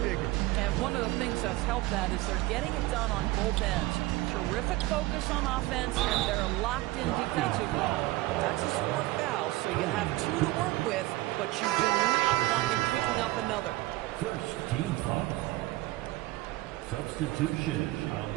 bigger. And one of the things that's helped that is they're getting it done on both ends. Terrific focus on offense, and they're locked in defensively. That's a sport foul, so you have 2 to work with, but you do not want them picking up another. First team foul. Substitution on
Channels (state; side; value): quieter; left; 18.8 dB